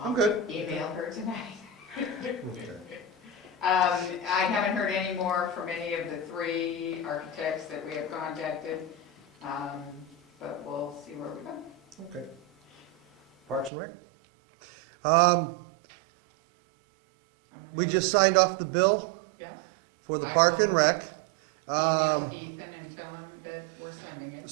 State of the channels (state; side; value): drops out; left; at 13.7 s